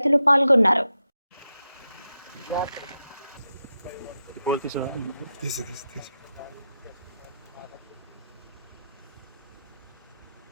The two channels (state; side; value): inverted; both; correlation -0.88